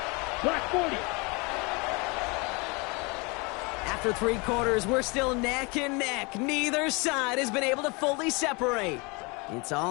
Black 40. After 3 quarters, we're still neck and neck. Neither side has been able to fully separate. It's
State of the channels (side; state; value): right; quieter; 28.7 dB